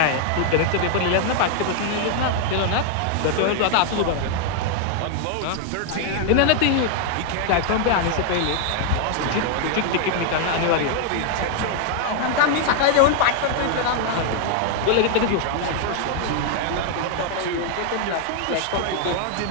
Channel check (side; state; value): both; different; correlation 0.00